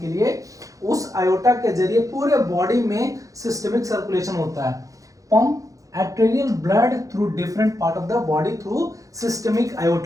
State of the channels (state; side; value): late; left; 0.16 ms